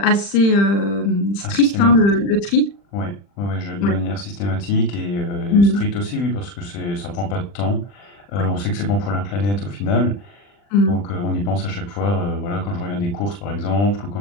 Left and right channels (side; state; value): right; late; 40 ms